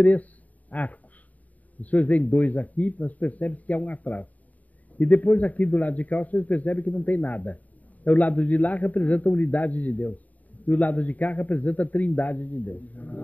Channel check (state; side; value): late; right; 0.073 ms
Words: arcos. Os senhores veem 2 aqui, mas percebem que há um atrás. E depois aqui do lado de cá, os senhores percebem que não tem nada. O lado de lá representa a unidade de Deus. E o lado de cá representa a trindade de Deus.